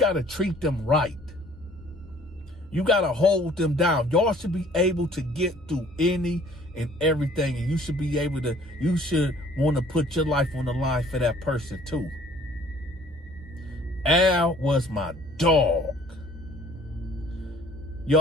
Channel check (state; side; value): normal; both; correlation 0.55